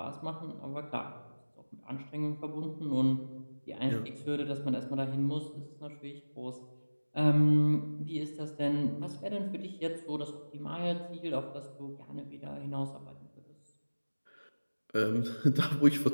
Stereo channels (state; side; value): inverted; both; correlation -1.00